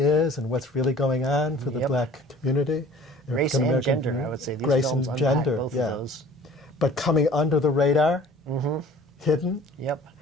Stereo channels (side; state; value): both; normal; correlation 0.48